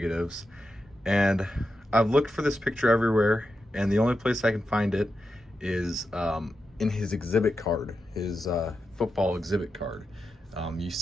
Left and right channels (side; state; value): both; normal; correlation 0.88